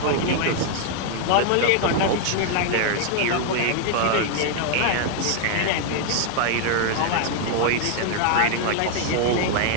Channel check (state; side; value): different; both; correlation 0.00